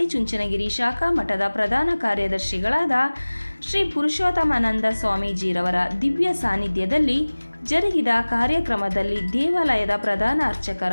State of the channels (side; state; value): both; inverted; correlation -1.00